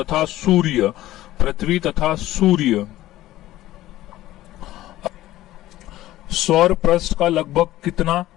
सूर्य। पृथ्वी तथा सूर्य। सौर पृष्ठ का लगभग कितना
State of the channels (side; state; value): right; quieter; 15.2 dB